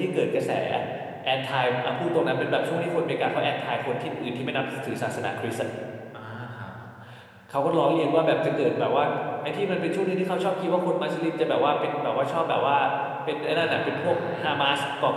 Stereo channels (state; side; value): identical; both; correlation 1.00